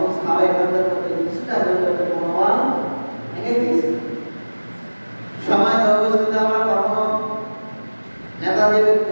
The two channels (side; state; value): both; inverted; correlation -1.00